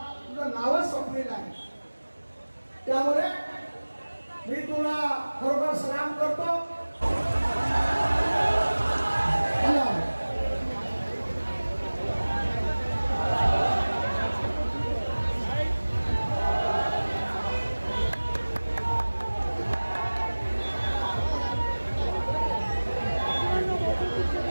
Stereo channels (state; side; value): inverted; both; correlation -1.00